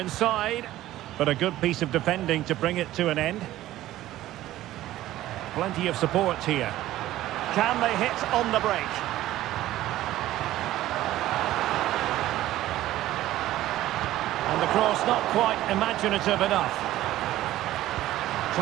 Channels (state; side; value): quieter; left; 14.8 dB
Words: but a good piece of defending to bring it to an end. Plenty of support here. Can they hit on the break? And the cross not quite imaginative enough.